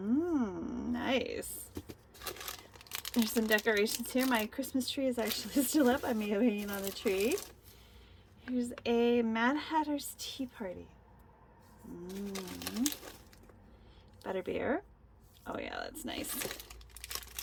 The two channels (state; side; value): identical; both; correlation 1.00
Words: There's some decorations here. My Christmas tree is actually still up. I'm hanging on the tree. Here's a Mad Hatter's Tea Party. Butterbeer. Oh yeah, that's nice.